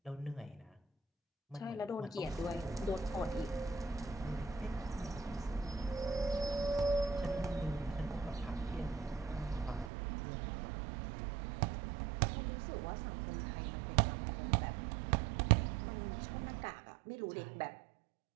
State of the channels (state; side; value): drops out; left; at 9.9 s